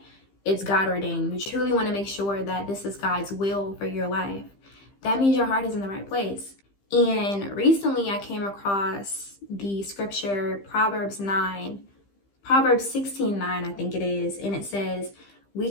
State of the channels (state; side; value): late; right; 15 ms